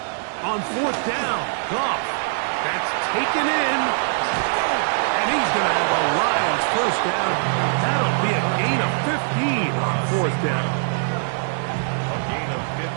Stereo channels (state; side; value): silent; left; 64 dB below the other